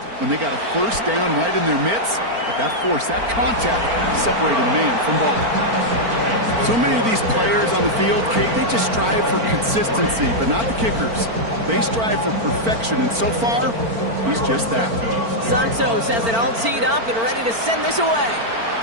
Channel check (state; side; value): late; left; 4.4 ms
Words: when they got a first down right in their midst. But that force, that contact, separated man from ball. So many of these players on the field, Kate, they just strive for consistency, but not the kickers. They strive for perfection, and so far, he's just that. Santos has it all teed up and ready to send this away.